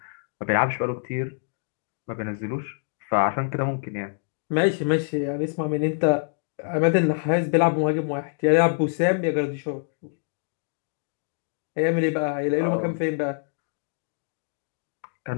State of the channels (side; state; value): right; silent; digital silence